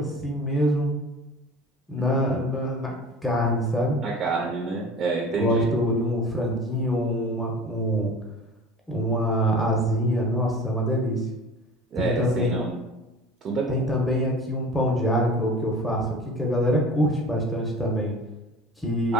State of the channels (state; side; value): normal; both; correlation 0.39